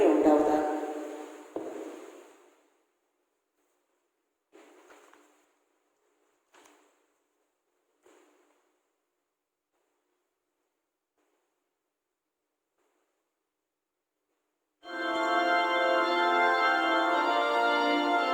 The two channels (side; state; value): both; identical; correlation 1.00